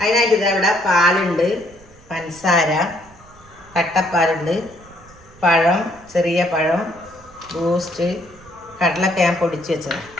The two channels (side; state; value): right; noise; rumble, 25 dB below the sound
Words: അതിനായിട്ട് ഇതവിടെ പാലുണ്ട്, പഞ്ചസാര, കട്ടപ്പാലുണ്ട്, പഴം, ചെറിയ പഴം, ബൂസ്റ്റ്, കടലൊക്കെ ഞാൻ പൊടിച്ച് വെച്ചത്.